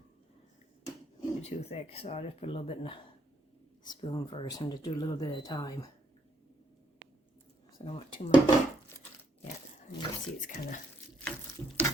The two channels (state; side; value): normal; both; correlation 0.73